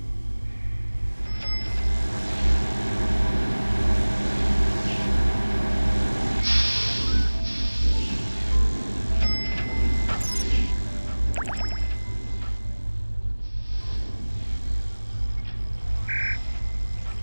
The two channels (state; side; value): inverted; both; correlation -1.00